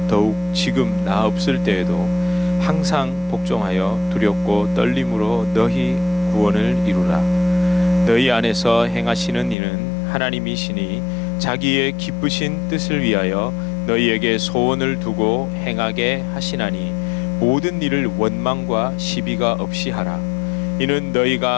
더욱 지금 나 없을 때에도 항상 복종하여 두렵고 떨림으로 너희 구원을 이루라. 너희 안에서 행하시는 이는 하나님이시니 자기의 기쁘신 뜻을 위하여 너희에게 소원을 두고 행하게 하시나니 모든 일을 원망과 시비가 없이 하라. 이는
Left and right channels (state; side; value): drops out; right; at 9.6 s